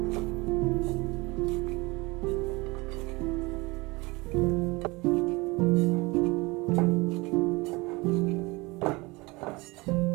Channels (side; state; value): left; quieter; 24.2 dB